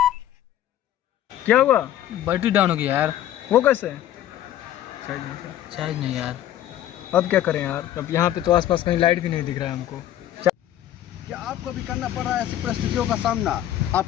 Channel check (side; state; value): right; quieter; 12.3 dB